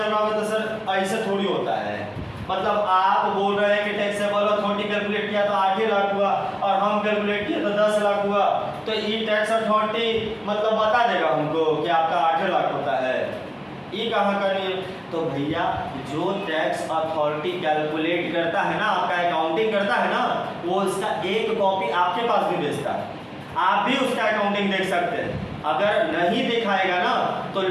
रहा होगा, तो सर ऐसे थोड़ी होता है। मतलब आप बोल रहे हैं कि टैक्सेबल अथॉरिटी कैलकुलेट किया तो 8 लाख हुआ, और हम कैलकुलेट किए तो 10 लाख हुआ, तो ये टैक्स अथॉरिटी मतलब बता देगा हमको कि आपका 8 लाख होता है। ये कहाँ करनी है? तो भैया जो टैक्स अथॉरिटी कैलकुलेट करता है ना, आपका अकाउंटिंग करता है ना, वो उसका एक कॉपी आपके पास भी भेजता है। आप भी उसका अकाउंटिंग देख सकते हैं। अगर नहीं दिखाएगा ना तो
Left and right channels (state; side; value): identical; both; correlation 1.00